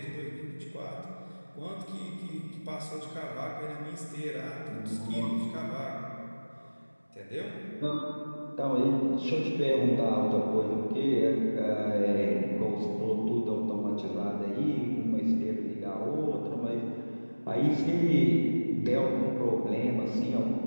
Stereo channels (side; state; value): both; inverted; correlation -1.00